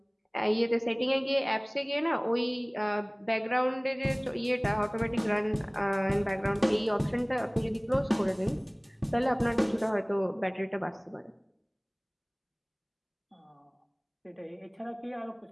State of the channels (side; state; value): both; identical; correlation 1.00